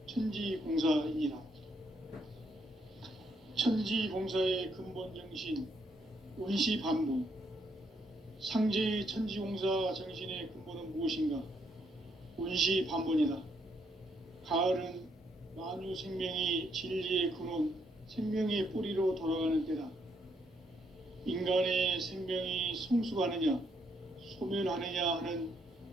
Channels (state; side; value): normal; both; correlation 0.74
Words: 천지공사이니라. 천지공사의 근본 정신 원시반복. 상제의 천지공사 정신의 근본은 무엇인가? 원시반복이다. 가을은 만유 생명이 진리의 근원, 생명의 뿌리로 돌아가는 때다. 인간의 생명이 성숙하느냐, 소멸하느냐 하는